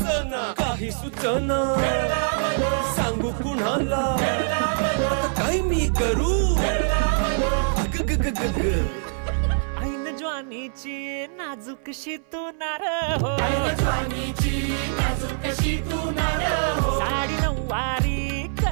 काही सुचना सांगू कुणाला आता काय मी करू अग ग ग ग ग ऐन ज्वानीची नाजूकशी तू नार हो साडी नऊवारी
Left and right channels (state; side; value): silent; left; 59 dB below the other